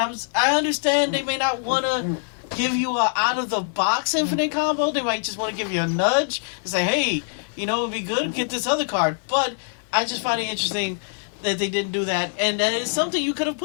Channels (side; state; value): right; silent; 57 dB below the other